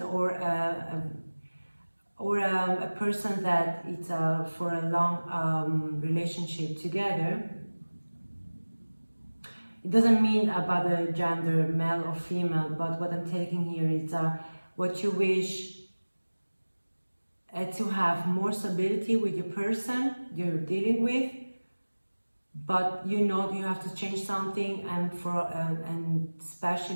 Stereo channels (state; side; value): inverted; both; correlation -1.00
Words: or a person that it's for a long relationship together. It doesn't mean about the gender, male or female, but what I'm taking here is what you wish to have more stability with your person you're dealing with, but you know you have to change something, and and